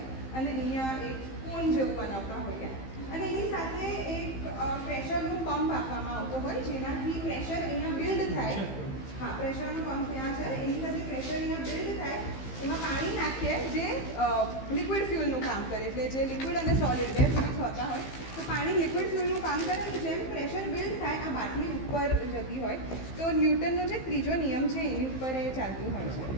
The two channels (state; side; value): late; right; 15 ms